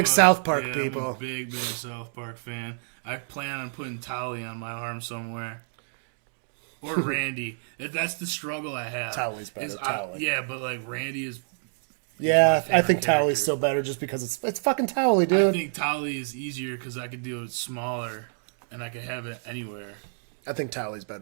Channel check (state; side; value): silent; left; digital silence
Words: a- South Park yeah, people. I'm a big South Park fan. I plan on putting Tolly on my arm somewhere. Or Randy. That's the struggle I have. Tolly's better, Is Tolly. yeah, but like Randy is. Yeah, my I favorite think Towley's character. still better just because it's fucking Towley, I dude. think Tolly is easier because I could do it smaller, and I could have it anywhere. I think Towley's